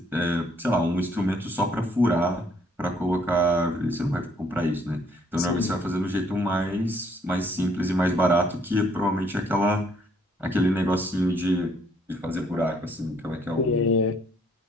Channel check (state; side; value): normal; both; correlation 0.66